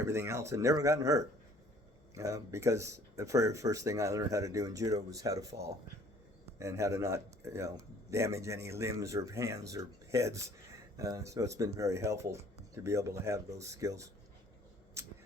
else and never gotten hurt. Because the very first thing I learned how to do in judo was how to fall. and how to not, damage any limbs or hands or heads. So it's been very helpful to be able to have those skills.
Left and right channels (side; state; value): both; normal; correlation 0.55